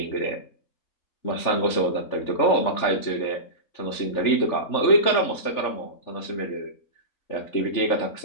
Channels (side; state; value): right; late; 3.4 ms